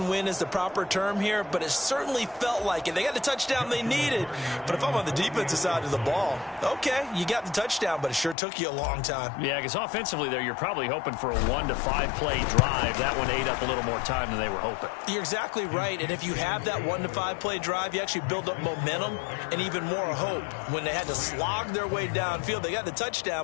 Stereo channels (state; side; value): drops out; right; at 8.3 s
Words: is the proper term here, but it certainly felt like it. They got the touchdown they needed, but if I'm on the defensive side of the ball, okay, you got the touchdown, but it sure took you a long time. Yeah, because offensively there, you're probably hoping for a 1 to 5 play drive. That one ate up a little more time than they were hoping. You're exactly right, and if you have that 1 to 5 play drive, you actually build up momentum and even more hope. When they had to slog their way downfield, they got the